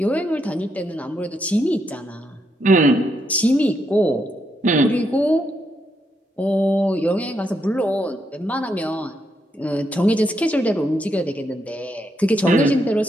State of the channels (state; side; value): normal; both; correlation 0.79